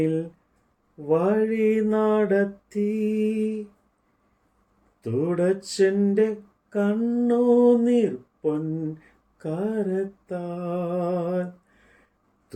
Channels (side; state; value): both; identical; correlation 1.00